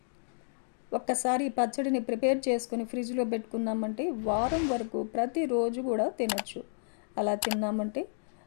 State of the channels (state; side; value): silent; right; digital silence